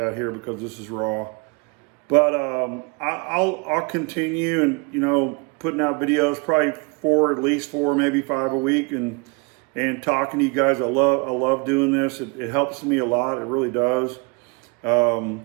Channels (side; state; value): left; quieter; 30.2 dB